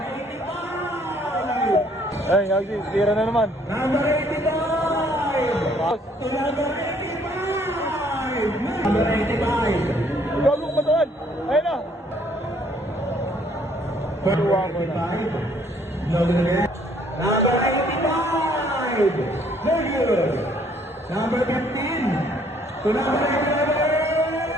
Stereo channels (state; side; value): normal; both; correlation 0.63